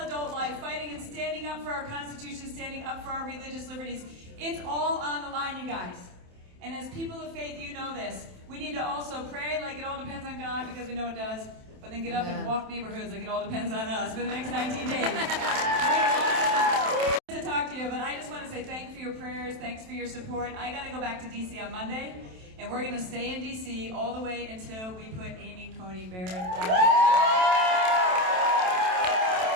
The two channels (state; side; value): late; left; 27 ms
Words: life, fighting and standing up for our Constitution, standing up for our religious liberties. It's all on the line, you guys. And as people of faith, you know this. We need to also pray like it all depends on God, because we know it does, but then get up and walk neighborhoods like it all depends on us for the next 19 days. To talk to you, but I just want to say thanks for your prayers, thanks for your support. I got to go back to D.C. on Monday, and we're going to stay in D.C. all the way until we put Amy Coney Barrett on.